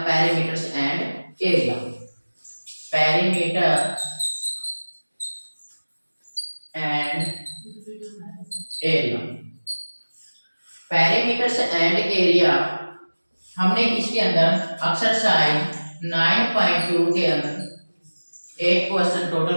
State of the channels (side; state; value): both; inverted; correlation -1.00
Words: parameters and area. Parameter and area. Parameters and area हमने इसके अंदर एक्सरसाइज 9.2 के अंदर 8 क्वेश्चन